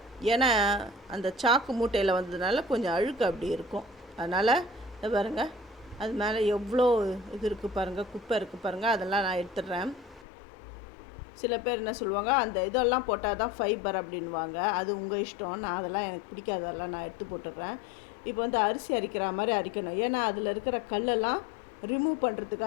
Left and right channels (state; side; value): drops out; right; at 10.2 s